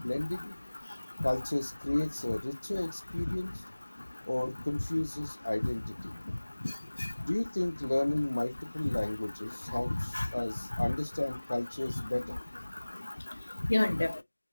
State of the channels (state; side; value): inverted; both; correlation -1.00